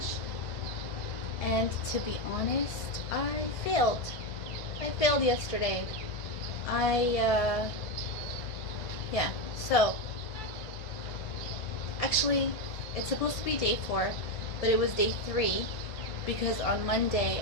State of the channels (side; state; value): right; late; 1.5 ms